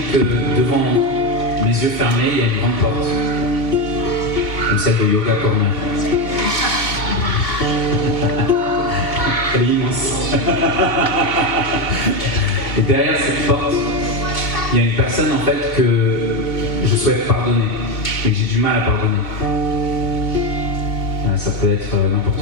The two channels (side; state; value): right; late; 2.7 ms